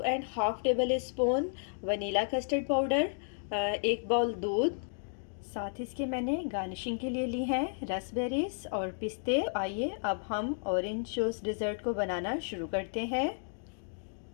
tablespoon vanilla custard powder, 1 bowl दूध। साथ ही इसके मैंने गार्निशिंग के लिए ली हैं रसबेरीज और पिस्ते। आइए अब हम ऑरेंज जूस डिज़र्ट को बनाना शुरू करते हैं।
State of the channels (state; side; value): silent; right; digital silence